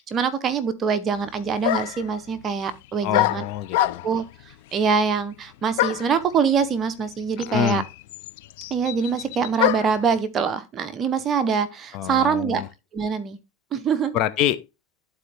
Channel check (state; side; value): normal; both; correlation 0.37